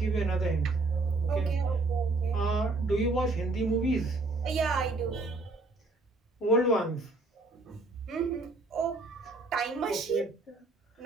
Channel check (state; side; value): quieter; left; 3.2 dB